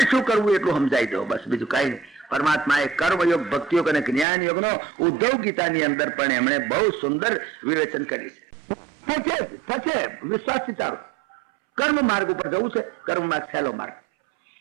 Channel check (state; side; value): drops out; left; at 4.2 s